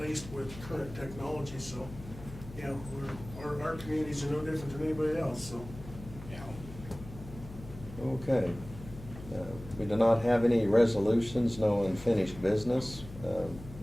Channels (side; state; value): left; noise; hum, 14 dB below the sound